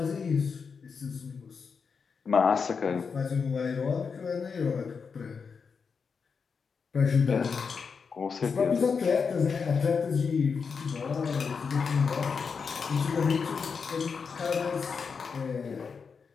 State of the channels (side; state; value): right; quieter; 5.6 dB